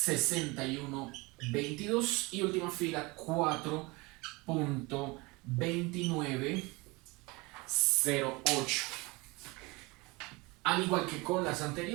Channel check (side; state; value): left; quieter; 24.8 dB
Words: y última fila 4.2908. Al igual que con las